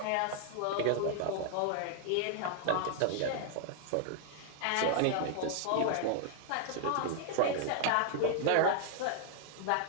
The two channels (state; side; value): different; both; correlation 0.00